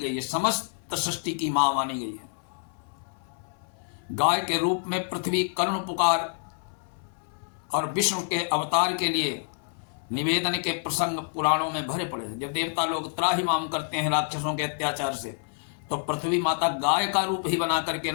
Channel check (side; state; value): right; silent; 60 dB below the other